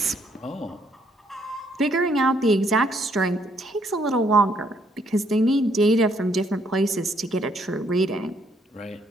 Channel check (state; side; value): normal; both; correlation 0.70